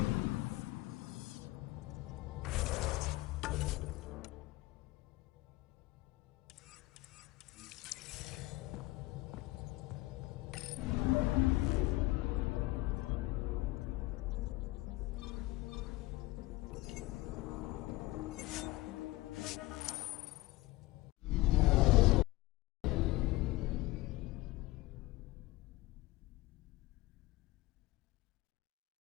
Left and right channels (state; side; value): quieter; right; 19.6 dB